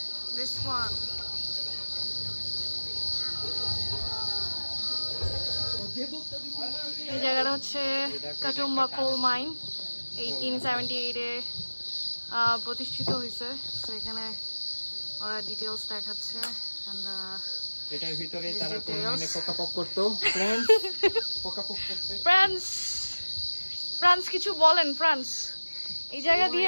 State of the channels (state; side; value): inverted; both; correlation -1.00